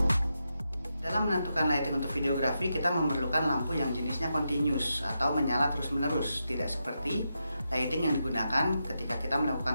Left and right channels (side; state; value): both; inverted; correlation -0.86